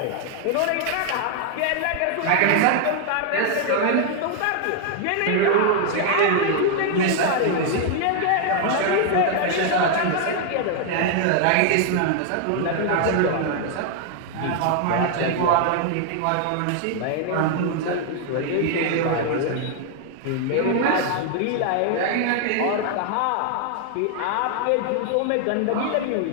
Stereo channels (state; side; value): different; both; correlation 0.00